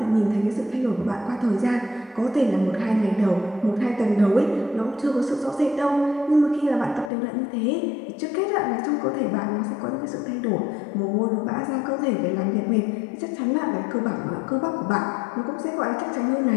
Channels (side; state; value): right; drops out; at 7.1 s